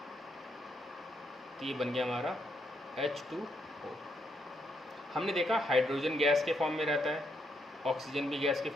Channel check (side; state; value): both; normal; correlation 0.77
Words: तो ये बन गया हमारा H2O। हमने देखा हाइड्रोजन गैस के फॉर्म में रहता है, ऑक्सीजन भी गैस के